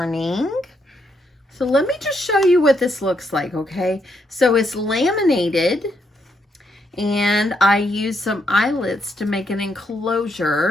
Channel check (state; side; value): normal; both; correlation 0.77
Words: So let me just show you what this looks like, okay? So it's laminated, and I used some eyelets to make an